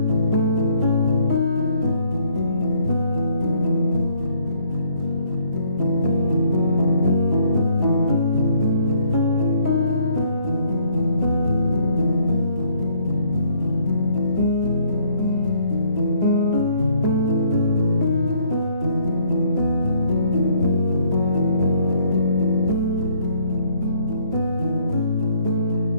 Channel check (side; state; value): both; inverted; correlation -0.64